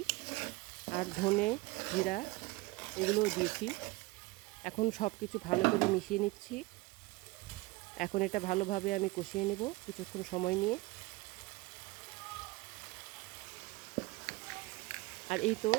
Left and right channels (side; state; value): left; quieter; 22.0 dB